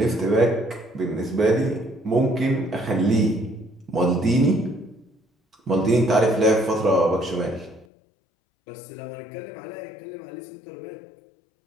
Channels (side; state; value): right; drops out; at 7.9 s